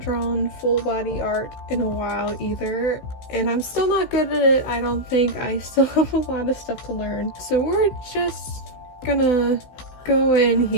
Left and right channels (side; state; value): right; late; 16 ms